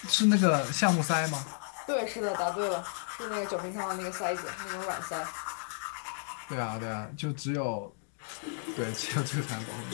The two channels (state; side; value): silent; right; digital silence